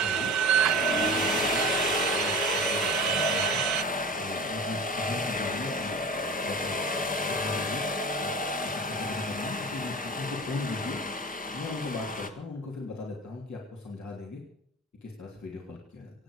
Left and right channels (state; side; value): normal; both; correlation 0.35